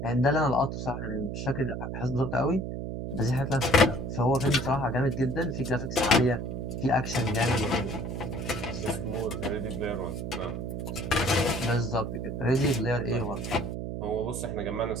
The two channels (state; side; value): noise; right; hum, 5 dB below the sound